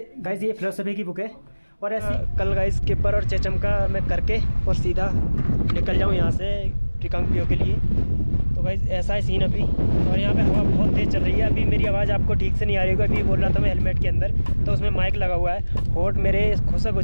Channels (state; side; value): inverted; both; correlation -1.00